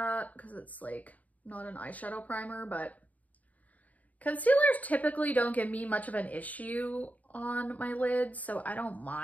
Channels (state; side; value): late; right; 0.073 ms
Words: because it's like not an eyeshadow primer, but Concealers typically don't give me much of an issue on my lids, so I don't